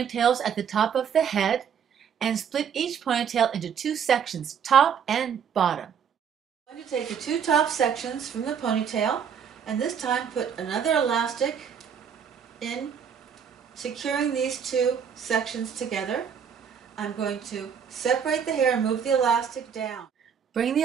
at the top of the head and split each ponytail into 2 sections, top and bottom. I'm going to take the 2 top sections from the ponytail and this time put another elastic in, securing these 2 sections together. I'm going to separate the hair and move the elastic down. Bring the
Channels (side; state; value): left; quieter; 7.5 dB